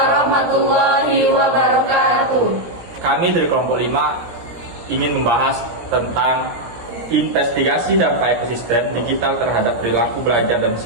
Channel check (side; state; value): left; late; 17 ms